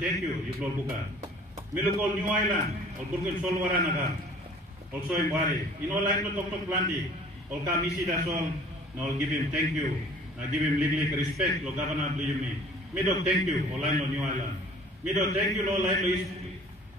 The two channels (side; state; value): both; normal; correlation 0.50